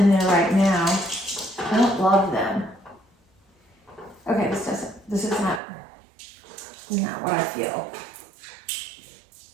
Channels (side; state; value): left; drops out; at 5.6 s